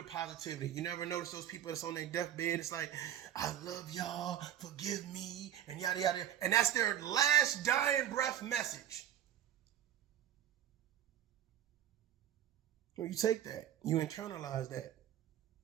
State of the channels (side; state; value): left; quieter; 10.8 dB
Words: positivity. You never notice those people that's on their deathbed? It's like, I love y'all, forgive me, and yada, yada. And that's their last dying breath message. Well, you take that. You internalize that.